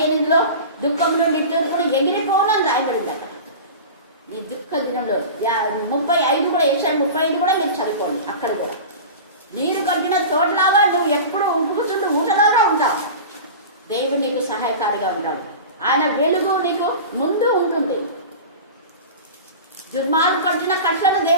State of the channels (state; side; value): inverted; both; correlation -0.32